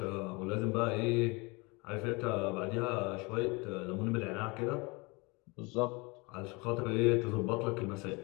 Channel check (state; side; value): quieter; right; 27.1 dB